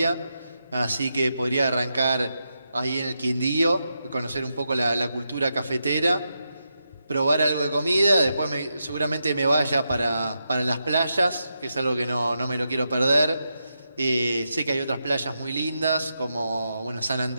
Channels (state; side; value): inverted; both; correlation -0.86